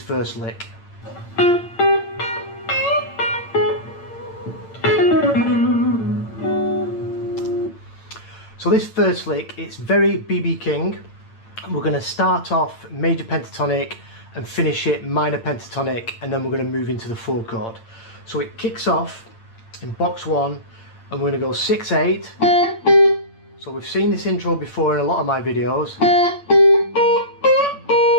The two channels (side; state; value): right; late; 8.8 ms